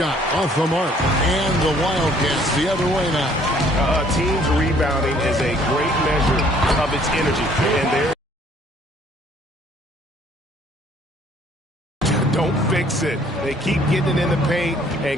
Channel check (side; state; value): both; normal; correlation 0.60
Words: off the mark, and the Wildcats the other way now. A team's rebounding is a great measure of its energy, and there. Don't fix it. They keep getting it in the paint and